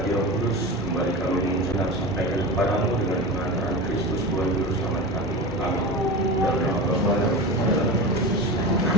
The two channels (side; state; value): both; normal; correlation 0.27